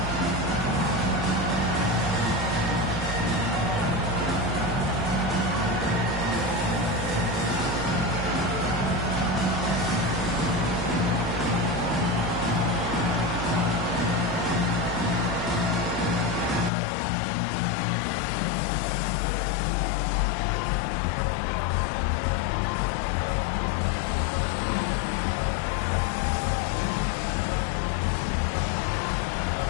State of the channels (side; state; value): right; drops out; at 16.7 s